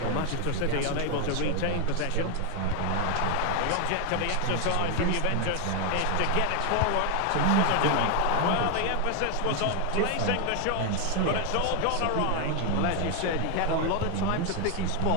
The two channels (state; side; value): different; both; correlation 0.01